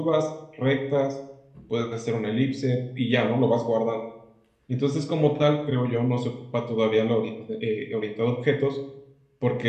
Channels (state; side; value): identical; both; correlation 1.00